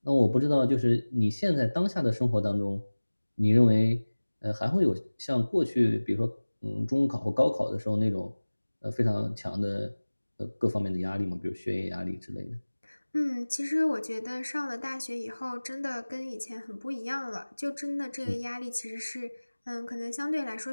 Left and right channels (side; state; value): both; inverted; correlation -1.00